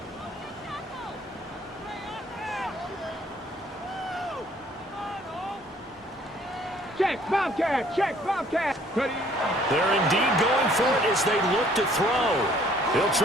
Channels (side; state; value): both; normal; correlation 0.59